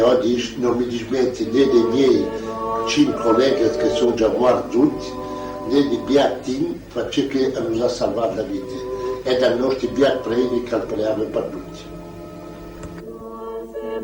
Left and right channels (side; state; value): both; identical; correlation 1.00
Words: oggi non mi dismetti né dei miei 5 colleghi che sono già morti tutti, né di Biatin, faccio che hanno salvato la vita, e dai nostri Biat predi che preavo per tutti.